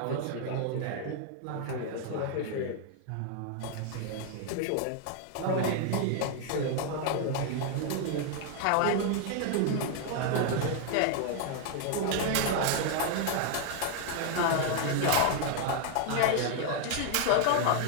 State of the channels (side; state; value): both; different; correlation 0.00